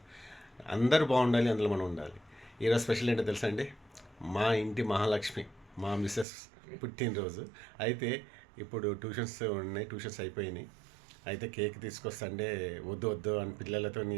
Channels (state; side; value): drops out; left; at 6.2 s